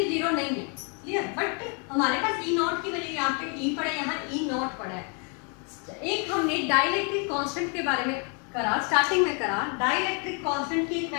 जीरो नहीं है, क्लियर, बट हमारे पास ई नॉट की वैल्यू यहाँ पे ई पड़ा है, यहाँ ई नॉट पड़ा है। एक हमने डाइलेक्ट्रिक कांस्टेंट के बारे में करा, स्टार्टिंग में करा। डाइलेक्ट्रिक कांस्टेंट की एक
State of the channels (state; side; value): quieter; right; 37.1 dB